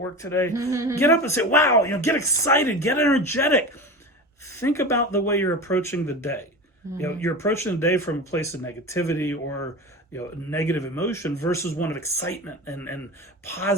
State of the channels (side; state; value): both; normal; correlation 0.29